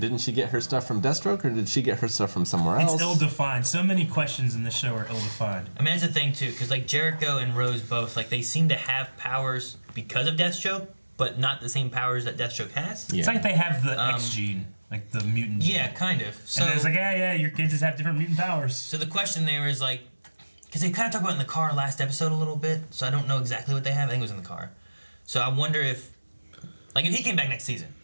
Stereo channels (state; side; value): inverted; both; correlation -1.00